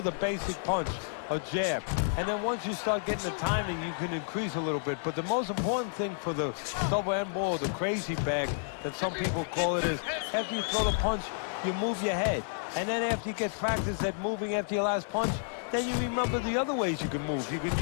a basic punch, a jab. And then once you start getting the timing, you can increase a little bit. But the most important thing for the double end ball, the crazy bag, that some people call it, is after you throw the punch, you move your head. And then after you get practice at moving after your last punch, then you remember the other ways you can move. You can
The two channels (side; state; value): right; silent; digital silence